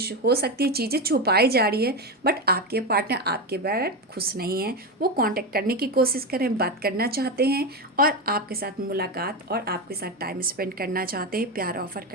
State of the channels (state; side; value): normal; both; correlation 0.15